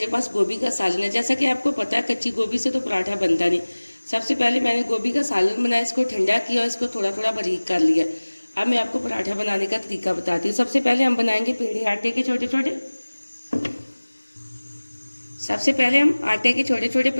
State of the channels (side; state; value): both; inverted; correlation -1.00